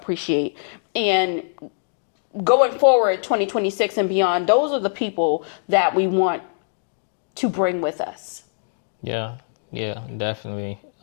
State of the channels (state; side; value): silent; right; digital silence